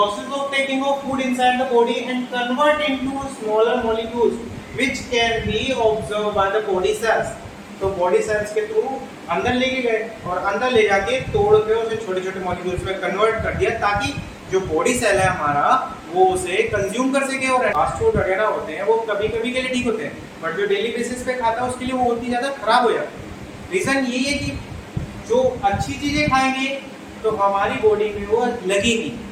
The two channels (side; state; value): both; identical; correlation 1.00